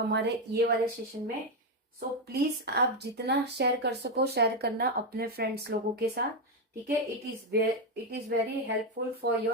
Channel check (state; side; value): normal; both; correlation 0.06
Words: ये वाले सेशन में। सो प्लीज आप जितना शेयर कर सको शेयर करना अपने फ्रेंड्स लोगों के साथ, ठीक है। It is very helpful for